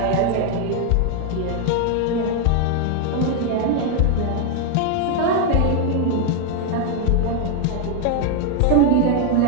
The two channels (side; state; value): both; different; correlation 0.01